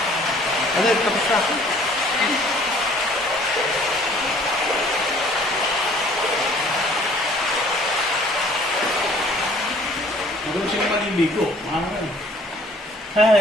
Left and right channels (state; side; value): normal; both; correlation 0.55